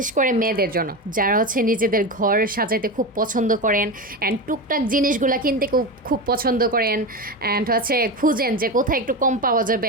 করে মেয়েদের জন্য, যারা হচ্ছে নিজেদের ঘর সাজাইতে খুব পছন্দ করেন অ্যান্ড টুকটাক জিনিসগুলো কিনতে খুব খুব পছন্দ করেন অ্যান্ড হচ্ছে খুঁজেন যে কোথায় একটু কম পাওয়া যাবে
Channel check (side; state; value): both; normal; correlation 0.20